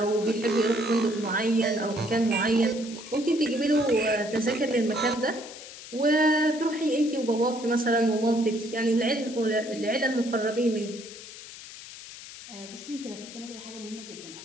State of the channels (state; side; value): noise; left; hiss, 14 dB below the sound